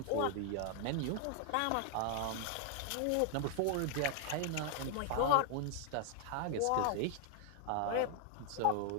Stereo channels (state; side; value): different; both; correlation 0.00